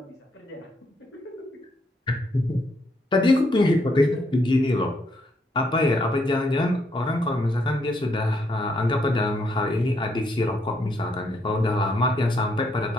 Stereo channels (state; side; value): normal; both; correlation 0.74